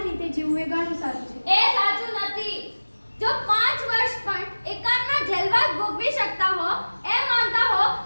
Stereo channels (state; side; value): inverted; both; correlation -1.00